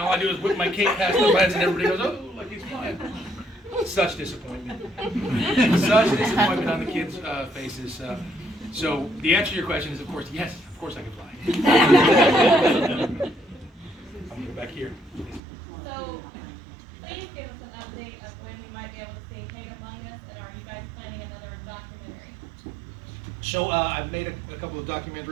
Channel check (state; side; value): drops out; left; at 15.4 s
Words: I do is whip my cape past their heads, and everybody goes, oh, like he's flying. Such disappointment. Such disappointment on the kids' faces. So the answer to your question is, of course, yes, of course I can fly. I'm going to go back here. So, please give us an update of when we might be able to see Hate Among Us, and are you guys planning another documentary? So I've made a couple of